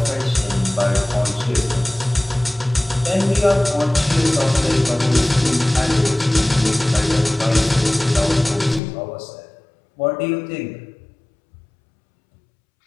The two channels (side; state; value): right; drops out; at 8.8 s